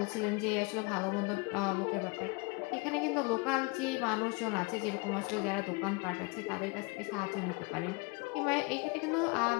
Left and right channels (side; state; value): right; quieter; 27.8 dB